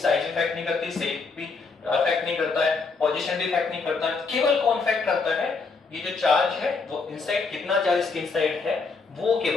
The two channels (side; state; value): right; quieter; 4.4 dB